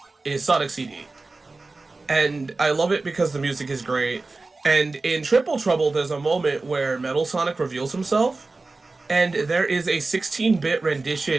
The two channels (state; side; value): quieter; left; 3.5 dB